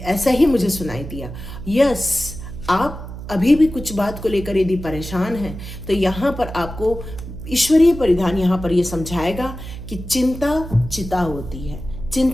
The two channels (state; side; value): noise; right; hum, 11 dB below the sound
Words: ऐसा ही मुझे सुनाई दिया। यस, आप अभी भी कुछ बात को लेकर यदि परेशान हैं तो यहाँ पर आपको ईश्वरीय परिधान यहाँ पर ये समझाएगा कि चिंता चिता होती है।